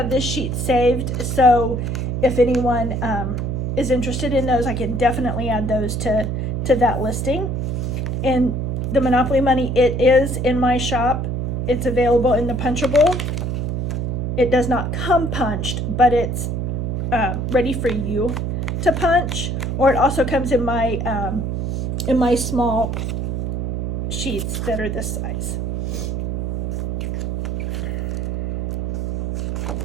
this sheet saved. So if anyone is interested in those, I can definitely add those to that listing. And the Monopoly money, it is in my shop. It's available in the punchable. It does not come punched, but it's ready for you to punch, or it also comes in my small sheets that are this size.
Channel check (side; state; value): right; noise; hum, 1 dB below the sound